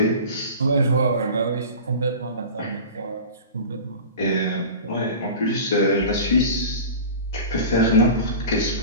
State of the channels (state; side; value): inverted; both; correlation -0.35